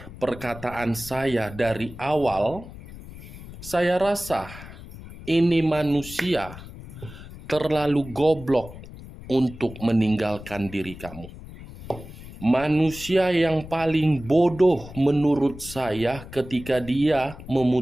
perkataan saya dari awal, saya rasa ini manusia terlalu goblok untuk meninggalkan diri kamu. Manusia yang paling bodoh menurut saya ketika dia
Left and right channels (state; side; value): noise; left; rumble, 15 dB below the sound